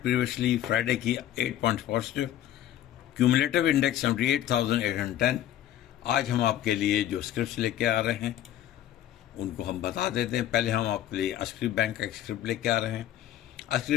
प्रीवियसली फ्राइडे की 8 पॉइंट्स पॉजिटिव, क्यूमुलेटिव इंडेक्स 78,810। आज हम आपके लिए जो स्क्रिप्ट्स लेके आ रहे हैं उनको हम बता देते हैं। पहले हम आपके लिए अस्क्री बैंक का एक स्क्रिप्ट लेके आ रहे हैं।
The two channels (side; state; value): right; quieter; 12.1 dB